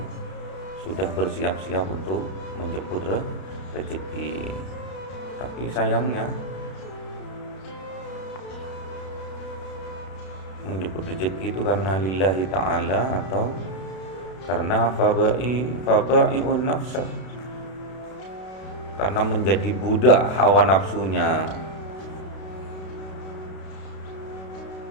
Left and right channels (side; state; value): right; late; 32 ms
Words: sudah bersiap-siap untuk menjemput rezeki. Tapi sayangnya menjemput rezeki itu karena lillahi ta'ala atau karena fabai'un nafsa, karena menjadi budak hawa nafsunya.